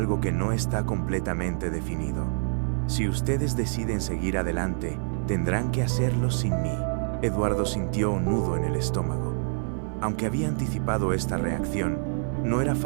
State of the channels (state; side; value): silent; left; 59 dB below the other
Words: que no está completamente definido. Si ustedes deciden seguir adelante, tendrán que hacerlo sin mí. Eduardo sintió un nudo en el estómago. Aunque había anticipado esta reacción, no era